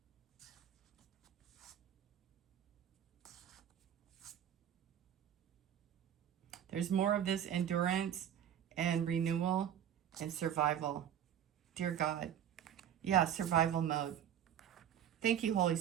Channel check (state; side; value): quieter; left; 10.0 dB